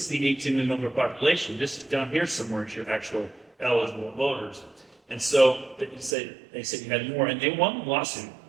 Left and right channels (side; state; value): left; drops out; at 6.2 s